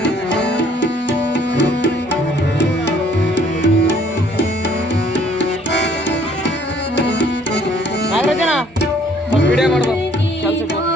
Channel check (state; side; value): normal; both; correlation 0.60